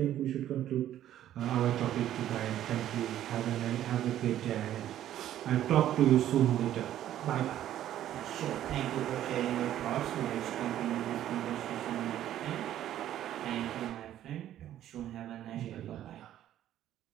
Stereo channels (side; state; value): left; quieter; 12.0 dB